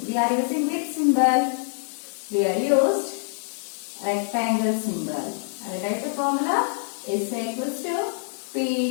we are using which symbol? We are used rectangle symbol. I will write the formula S equals to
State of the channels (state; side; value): silent; right; digital silence